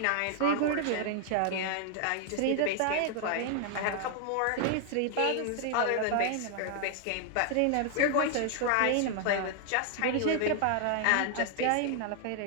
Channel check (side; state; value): both; different; correlation 0.00